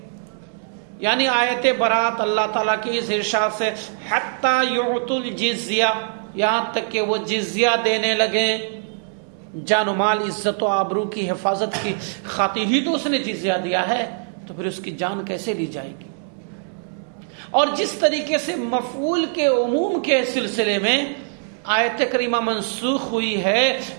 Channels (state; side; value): silent; left; digital silence